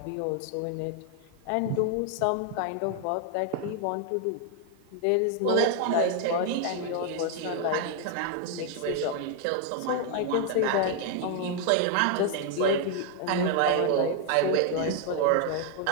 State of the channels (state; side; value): different; both; correlation 0.00